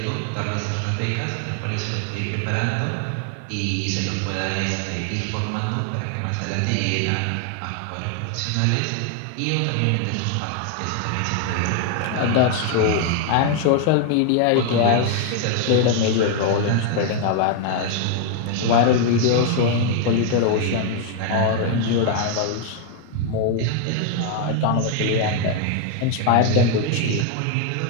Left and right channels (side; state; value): both; different; correlation 0.00